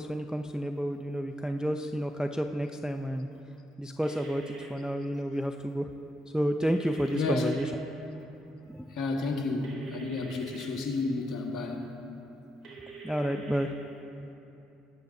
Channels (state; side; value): normal; both; correlation 0.83